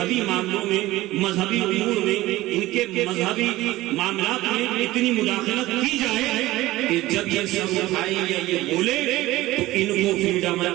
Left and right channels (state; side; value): quieter; left; 17.5 dB